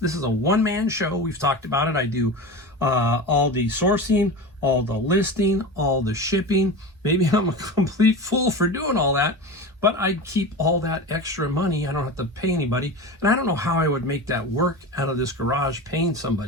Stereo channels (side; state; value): both; normal; correlation 0.28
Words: is a one-man show. We've talked about it. I do all the sourcing, all the listing, all the shipping. Maybe I'm a complete fool for doing all that, but I keep all that extra money. I don't have to pay anybody. And I don't know how I would make that work out of this garage paying